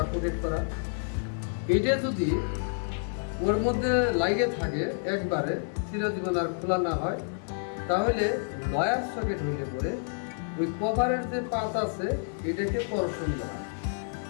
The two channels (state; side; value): silent; right; digital silence